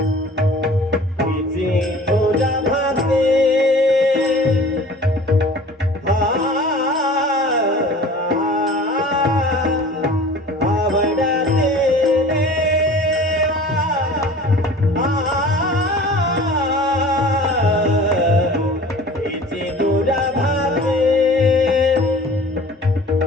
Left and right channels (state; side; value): normal; both; correlation 0.44